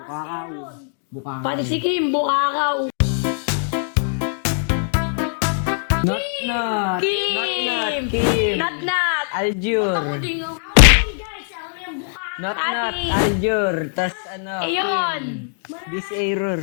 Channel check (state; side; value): silent; right; digital silence